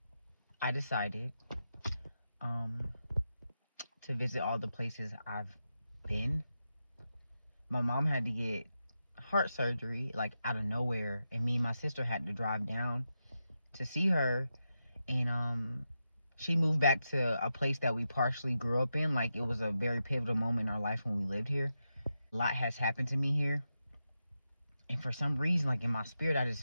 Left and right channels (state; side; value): inverted; both; correlation -0.88